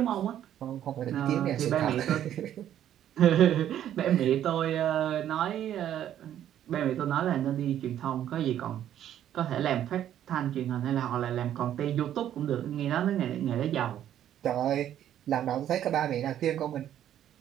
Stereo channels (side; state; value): left; quieter; 11.0 dB